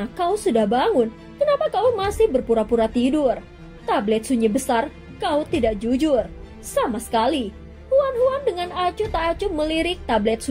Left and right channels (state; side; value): identical; both; correlation 1.00